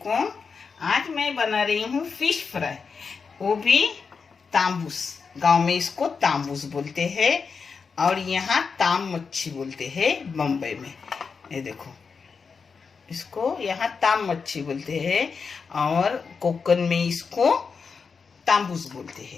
आज मैं बना रही हूँ फिश फ्राई, वो भी तांबूस। गांव में इसको तांबूस बोलते हैं और यहाँ ताम मच्छी बोलते हैं बम्बई में। ये देखो, इसको यहाँ ताम मच्छी बोलते हैं और कोकन में इसको तांबूस बोलते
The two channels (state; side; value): quieter; right; 5.4 dB